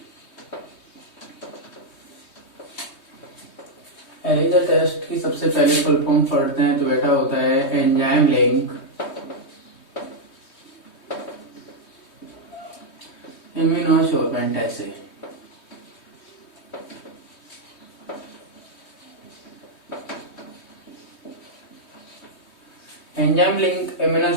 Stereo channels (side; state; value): right; late; 3.2 ms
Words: एलिजा टेस्ट की सबसे पहले फुल फॉर्म पढ़ते हैं तो बेटा होता है एंजाइम लिंक इम्यूनोसोर्बेंट ऐसे। एंजाइम लिंक